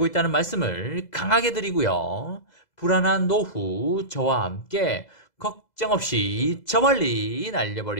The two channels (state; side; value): late; right; 2.0 ms